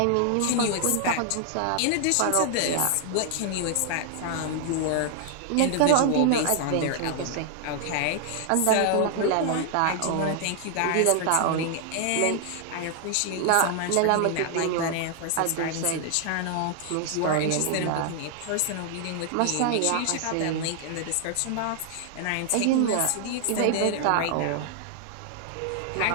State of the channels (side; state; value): both; different; correlation 0.00